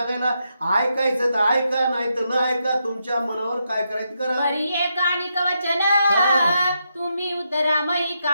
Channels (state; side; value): inverted; both; correlation -0.82